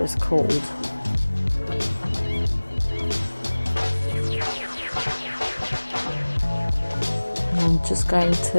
is called. And I'm just going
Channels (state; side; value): inverted; both; correlation -1.00